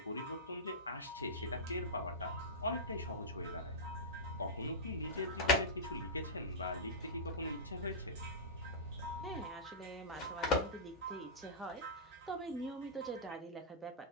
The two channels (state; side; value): normal; both; correlation -0.14